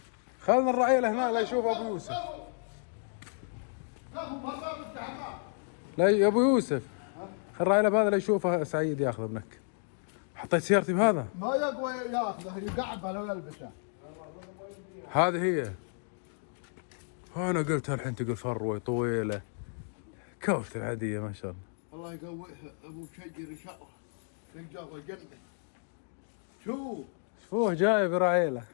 خلنا الرعيله هنا لا يشوف ابو يوسف. لا يا ابو يوسف خل الرعيله بهذا لا يشوفه سعيد ياخذه ابنك. حطيت سيارتي بهذا. ما يقوى ياخذه يقعد على يلبسه. هذه هي. انا قلتها الحين تقول فروه طويله كوشة العاديه ما شاء الله. الله يقويها ابو شجر ان شاء الله يلقاه الجنه. شوف شوفوه جاي برعيله.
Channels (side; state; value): right; silent; 56 dB below the other